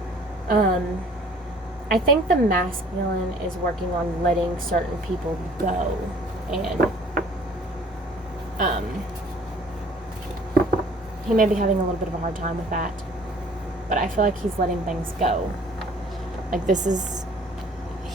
I think the masculine is working on letting certain people go, and he may be having a little bit of a hard time with that, but I feel like he's letting things go. Like,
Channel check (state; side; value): normal; both; correlation 0.53